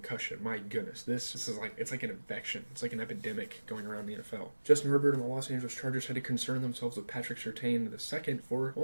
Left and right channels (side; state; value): both; inverted; correlation -1.00